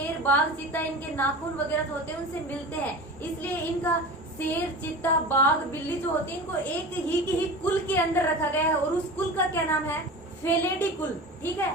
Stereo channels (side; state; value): both; normal; correlation 0.33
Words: बाघ, चीता, इनके नाखून वगैरह जो होते हैं उनसे मिलते हैं। इसलिए इनका शेर, चीता, बाघ, बिल्ली जो होती है, इनको एक ही कुल के अंदर रखा गया है और उस कुल का क्या नाम है, फेलेडी कुल। ठीक